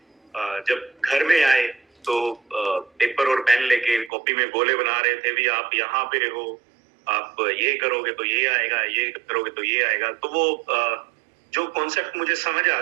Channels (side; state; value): left; drops out; at 4.1 s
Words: जब घर में आए तो पेपर और पेन लेके कॉपी में गोले बना रहे थे, भी आप यहाँ पे हो, आप ये करोगे तो ये आएगा, ये करोगे तो ये आएगा। तो वो जो कॉन्सेप्ट मुझे समझ आ